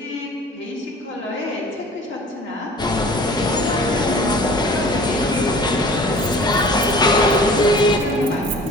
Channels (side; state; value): both; normal; correlation 0.46